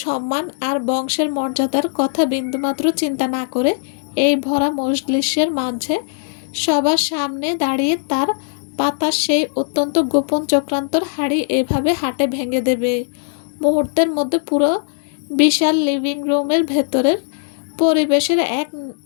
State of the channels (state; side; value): silent; right; digital silence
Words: সম্মান আর বংশের মর্যাদার কথা বিন্দুমাত্র চিন্তা না করে এই ভরা মজলিসের মাঝে সবার সামনে দাঁড়িয়ে তার পাতা সেই অত্যন্ত গোপন চক্রান্তর হাড়ি এভাবে হাটে ভেঙে দেবে। মুহূর্তের মধ্যে পুরো বিশাল লিভিং রুমের ভেতরের পরিবেশের এক